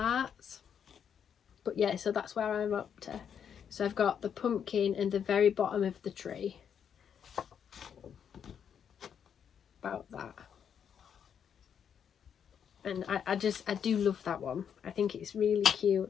But yeah, so that's where I'm up to. So I've got the pumpkin and the very bottom of the tree. About that. And I do love that one. I think it's really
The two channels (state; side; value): quieter; right; 8.0 dB